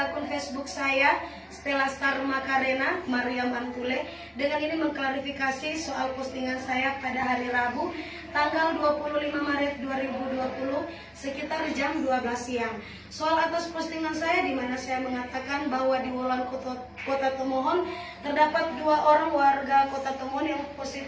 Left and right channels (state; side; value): identical; both; correlation 1.00